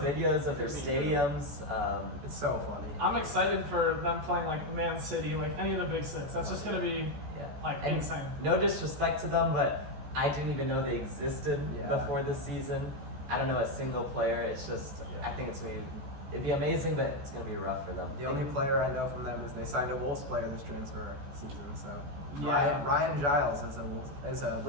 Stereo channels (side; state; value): left; late; 14 ms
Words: of their stadiums, It's so funny. I'm excited for them playing like Man City, like any of the big six. That's just gonna be and insane. No disrespect to them, but I didn't even know they existed Yeah. before this season. I don't know a single player. It's just I think it'd be amazing, but it's gonna be rough for them. The only player I know from them is they signed a Wolves player this transfer season. So Yeah. Ryan Giles is a